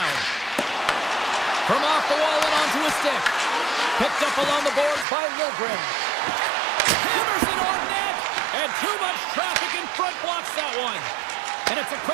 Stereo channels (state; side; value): drops out; left; at 5.1 s